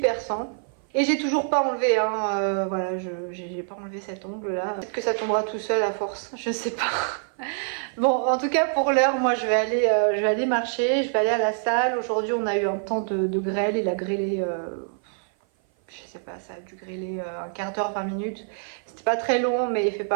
sain. Et j'ai toujours pas enlevé, hein, voilà, j'ai pas enlevé cet ongle là. Peut-être que ça tombera tout seul à force, je sais pas. Bon, en tout cas pour l'heure, moi je vais aller marcher, je vais aller à la salle. Aujourd'hui on a eu un temps de grêle, il a grêlé, je sais pas, ça a dû grêler un quart d'heure, 20 minutes. C'était pas très long mais il fait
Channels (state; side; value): silent; left; 56 dB below the other